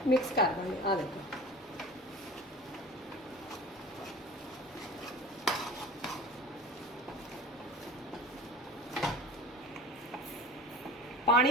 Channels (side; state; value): both; normal; correlation 0.37